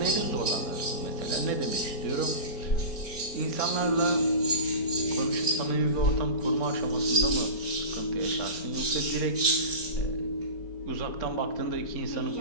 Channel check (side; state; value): right; late; 4.3 ms